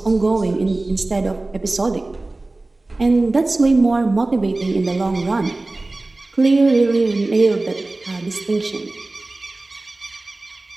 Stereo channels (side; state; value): left; quieter; 3.0 dB